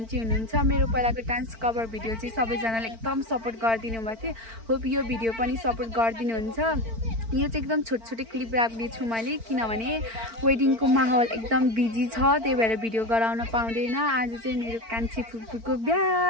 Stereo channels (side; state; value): left; late; 4.4 ms